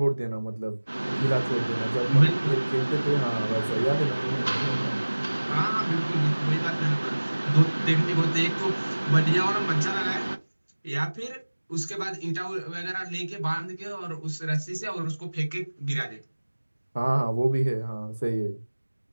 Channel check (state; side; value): inverted; both; correlation -1.00